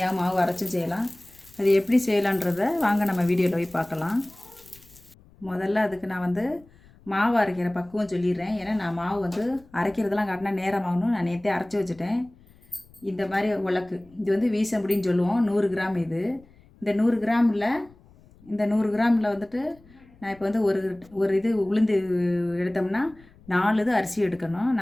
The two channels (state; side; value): noise; left; rumble, 27 dB below the sound